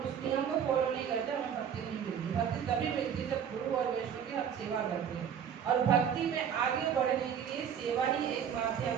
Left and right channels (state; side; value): quieter; left; 8.2 dB